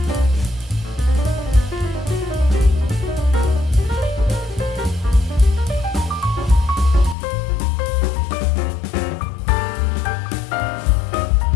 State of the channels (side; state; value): right; drops out; at 7.2 s